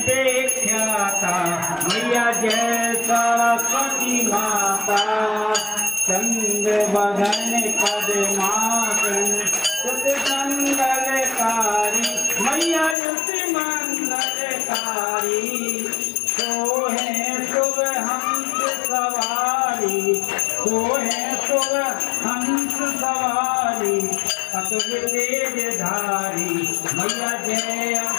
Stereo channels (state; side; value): drops out; right; at 13.0 s